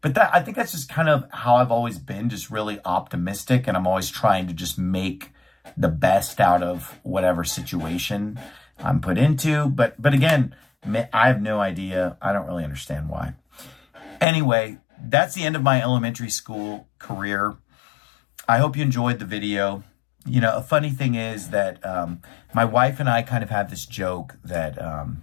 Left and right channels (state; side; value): drops out; right; at 14.2 s